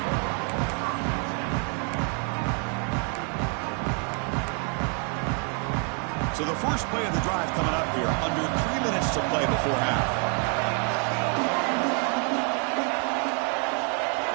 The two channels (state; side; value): quieter; left; 39.4 dB